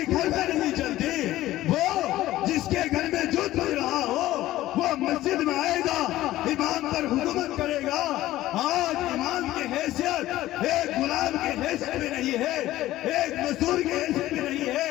گھر میں نہیں چلتی، وہ جس کے گھر میں جھوٹ بج رہا ہو، وہ مسجد میں آئے گا، امام پر حکومت کرے گا. آج امام کی حیثیت ایک غلام کی حیثیت میں نہیں ہے، ایک مزدور کی حیثیت میں نہیں ہے.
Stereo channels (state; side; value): quieter; right; 15.4 dB